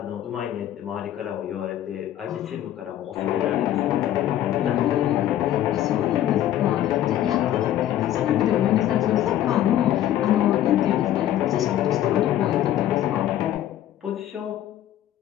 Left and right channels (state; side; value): quieter; right; 12.1 dB